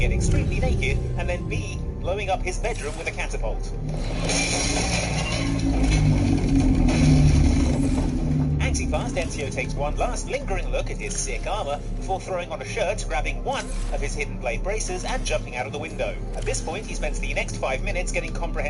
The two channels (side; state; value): both; identical; correlation 1.00